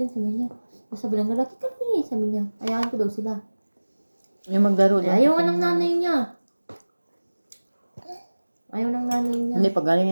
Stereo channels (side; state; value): both; inverted; correlation -1.00